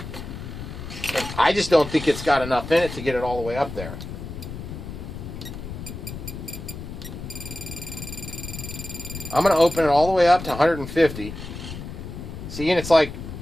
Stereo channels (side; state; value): left; noise; rumble, 9 dB below the sound